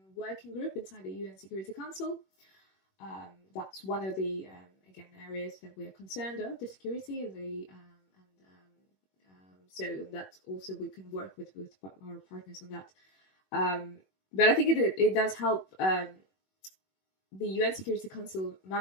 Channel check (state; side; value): late; right; 21 ms